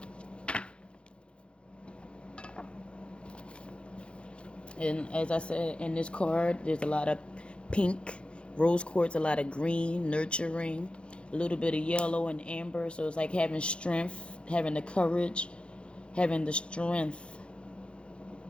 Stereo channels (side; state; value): right; late; 0.057 ms